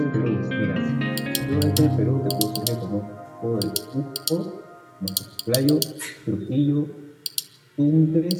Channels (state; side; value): identical; both; correlation 1.00